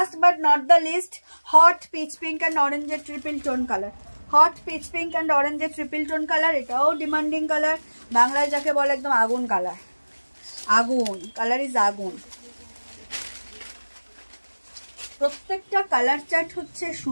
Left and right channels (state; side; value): inverted; both; correlation -1.00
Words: but not the least, hot peach pink and অরেঞ্জের triple tone colour. Hot peach pink and অরেঞ্জের ট্রিপল টোন কালার, এটাও ডিমান্ডিং কালার, বাংলায় যাকে বলে একদম আগুন কালার, আগুন কালার ইজ আগুন। প্রত্যেকটা কালার চার্ট হচ্ছে